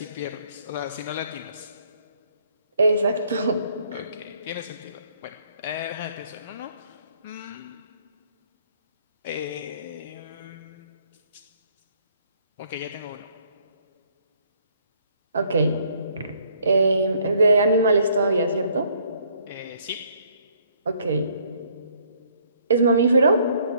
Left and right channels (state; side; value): inverted; both; correlation -0.64